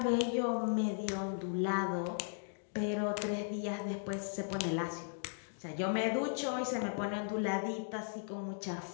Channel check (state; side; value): silent; right; digital silence